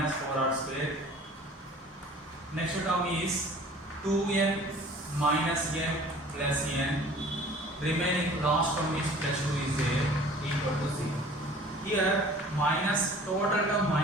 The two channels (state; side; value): normal; both; correlation 0.47